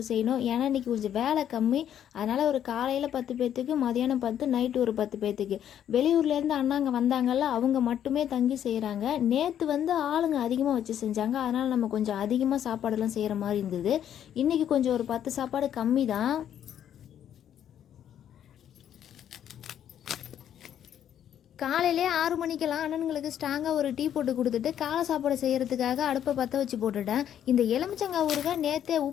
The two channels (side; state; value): right; quieter; 10.0 dB